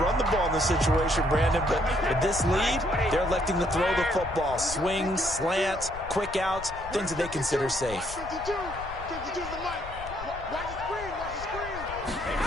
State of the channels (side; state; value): left; noise; rumble, 13 dB below the sound